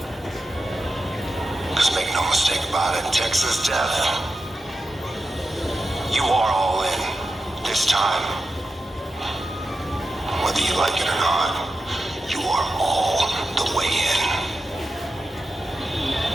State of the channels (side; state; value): both; normal; correlation 0.90